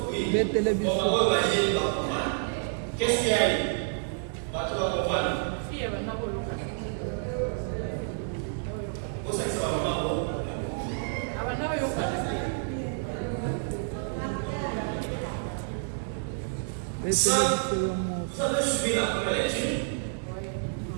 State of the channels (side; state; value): left; silent; 59 dB below the other